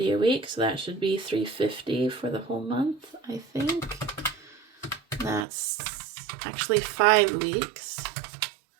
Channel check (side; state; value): left; drops out; at 5.5 s